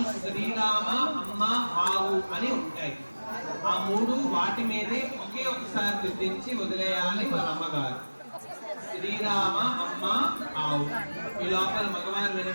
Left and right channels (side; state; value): both; inverted; correlation -1.00